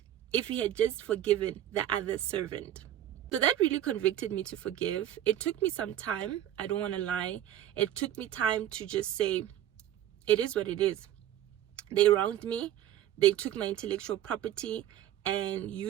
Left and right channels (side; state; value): left; quieter; 11.8 dB